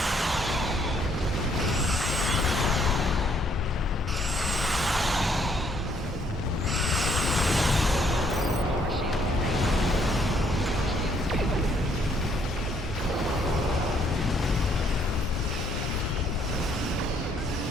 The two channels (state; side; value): normal; both; correlation 0.68